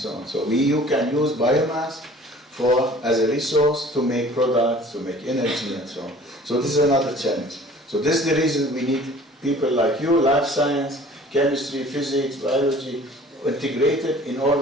on. So you can use biomass as a resource to make products, to make energy, and so on. So this is another challenge. So this is the reason we need people like you, life science, chemistry, physics, biology, integrated in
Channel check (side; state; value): both; normal; correlation 0.49